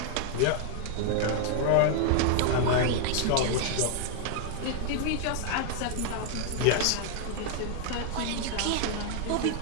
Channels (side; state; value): both; different; correlation 0.00